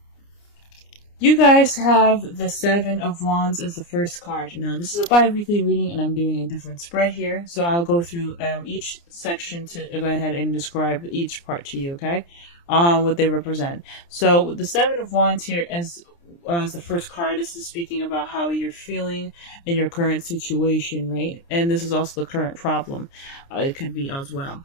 You guys have the Seven of Wands as the first card. Now, this is a bi-weekly reading, and I'm doing a different spread here. So I'll go through each section to go ahead and describe each part to you, okay? What they represent. So the Seven of Wands here as the first card, this is speaking about how you're feeling in your current situation, right? And this is also the current problem. It could be as well.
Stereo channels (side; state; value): right; late; 29 ms